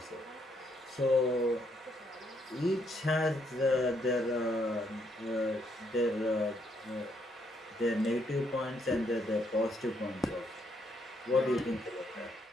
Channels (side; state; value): both; normal; correlation 0.74